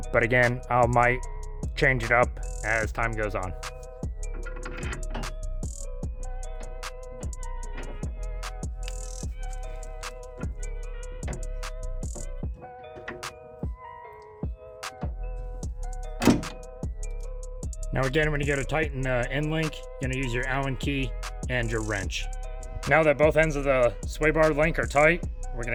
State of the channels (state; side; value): identical; both; correlation 1.00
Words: again, I might change it up as time goes on. Now again, when you go to tighten the end link, you're gonna use your Allen key and your wrench. Now that both ends of the sway bar link are tight, we're